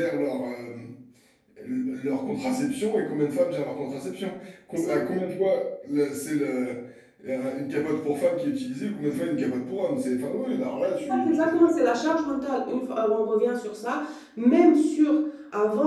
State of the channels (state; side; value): identical; both; correlation 1.00